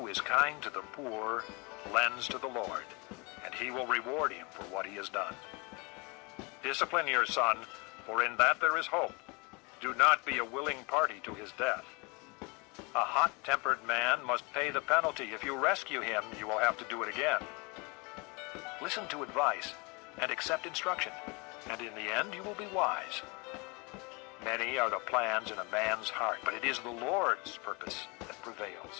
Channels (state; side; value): quieter; right; 29.1 dB